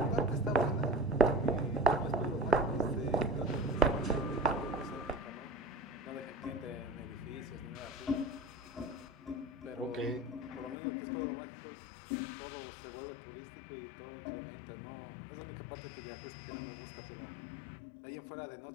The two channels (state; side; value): drops out; right; at 10.8 s